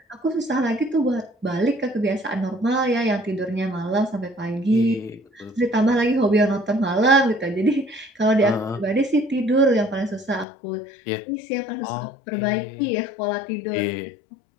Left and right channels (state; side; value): drops out; right; at 10.5 s